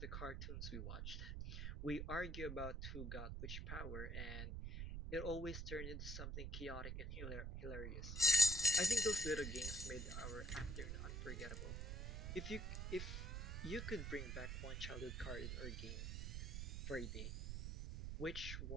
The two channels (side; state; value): right; noise; rumble, 4 dB below the sound